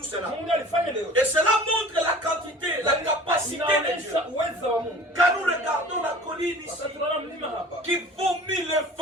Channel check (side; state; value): both; normal; correlation 0.44